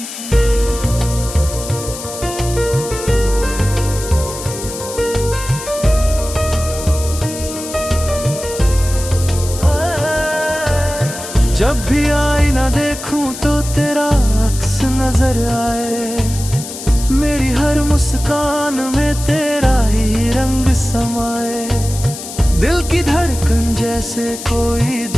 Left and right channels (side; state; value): left; noise; hiss, 10 dB below the sound